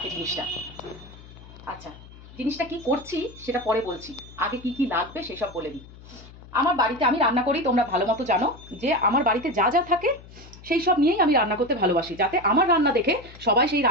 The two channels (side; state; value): left; noise; hum, 19 dB below the sound